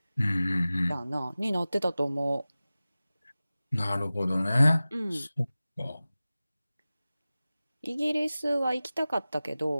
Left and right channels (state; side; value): inverted; both; correlation -0.97